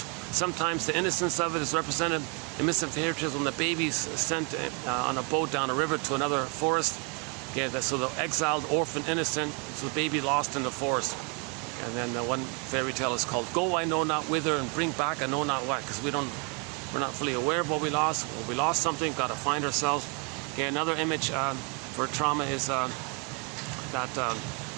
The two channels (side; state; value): left; quieter; 33.7 dB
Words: Sometimes the innocence of it is represented in Missing Fairy Tales when the baby's sent on a boat down a river to another forest. Okay, so the exiled, orphan, innocent, so the baby lost in the forest. And then one fairy tale is called Go I Know Not Whither and Bring Back I Know Not What, because we're not fully aware of what we lost. When we lost something, got to find ourselves. Okay, another image for trauma is that